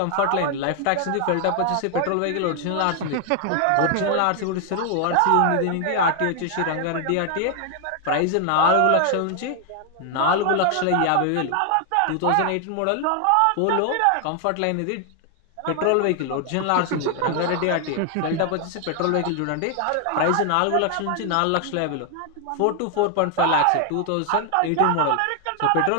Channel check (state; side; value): different; both; correlation 0.00